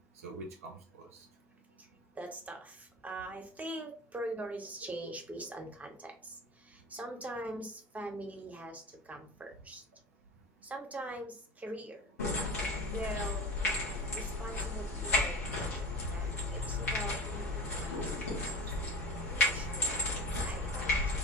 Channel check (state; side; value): normal; both; correlation 0.32